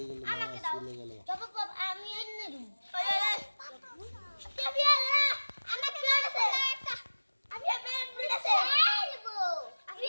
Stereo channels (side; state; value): both; inverted; correlation -1.00